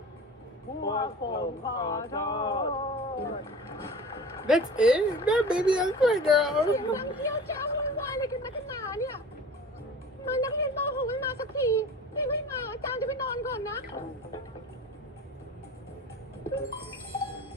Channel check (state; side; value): normal; both; correlation 0.38